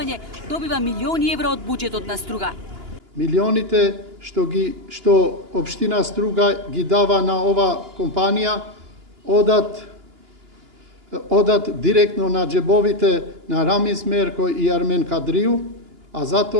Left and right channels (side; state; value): left; late; 2.9 ms